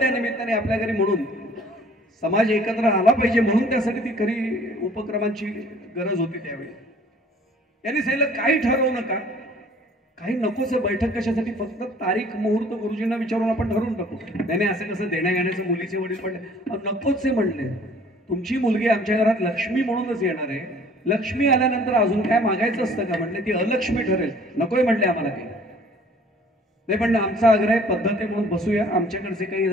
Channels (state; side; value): normal; both; correlation 0.54